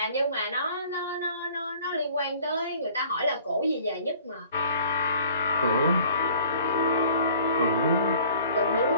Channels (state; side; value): inverted; both; correlation -0.52